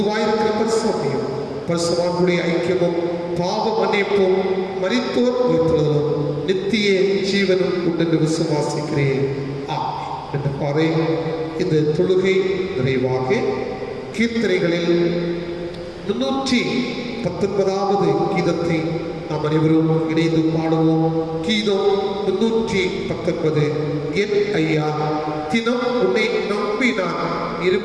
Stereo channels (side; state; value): both; identical; correlation 1.00